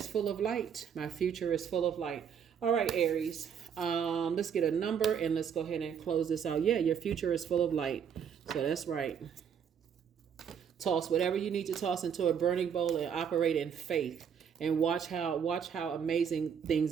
full of light. My future is full of light. All right, Aries. Let's get a number and let's go ahead and close this out. Yeah, your future is full of light. So that's right. Toss whatever you need to toss into a burning bowl and operate in faith, and watch how amazing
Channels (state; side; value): quieter; left; 7.6 dB